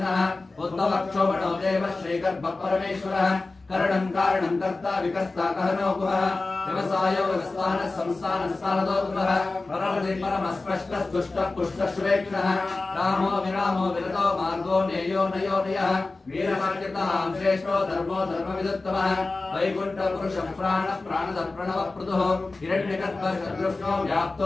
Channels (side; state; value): right; quieter; 3.4 dB